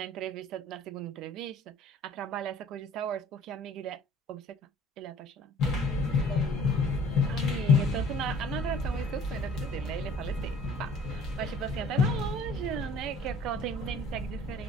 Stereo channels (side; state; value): both; normal; correlation 0.51